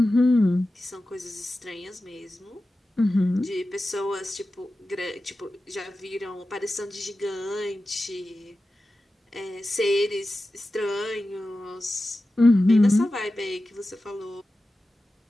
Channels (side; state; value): both; normal; correlation 0.94